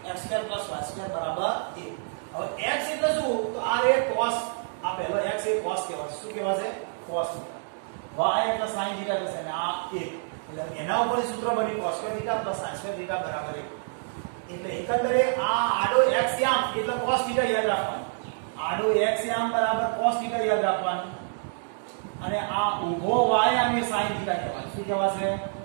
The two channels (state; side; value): silent; left; digital silence